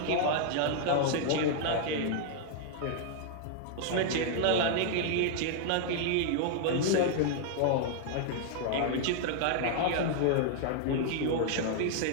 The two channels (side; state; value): both; different; correlation -0.01